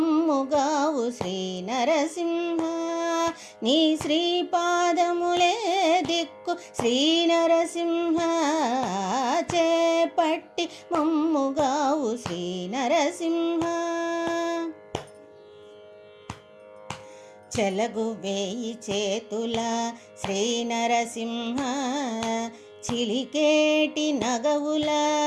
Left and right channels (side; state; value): both; identical; correlation 1.00